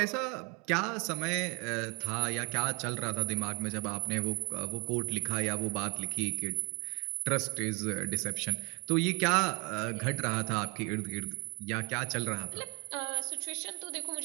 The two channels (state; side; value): quieter; left; 32.3 dB